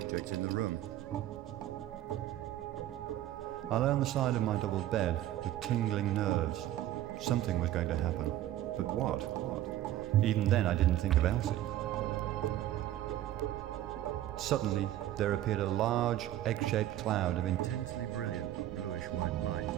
in the room. I lay on the side of my double bed with tingling nerves. Something was going to happen, but what? Even then I didn't think of Elsie. Suddenly there appeared a large, egg-shaped cloud of intensely brilliant bluish-white light.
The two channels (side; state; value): left; quieter; 13.3 dB